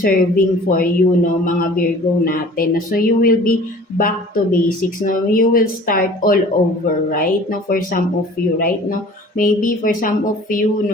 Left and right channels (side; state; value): both; normal; correlation 0.47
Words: for you, no, mga Virgo natin. So you will be back to basics, no. You will start all over, right? No, for some of you, right? No, maybe for some of you,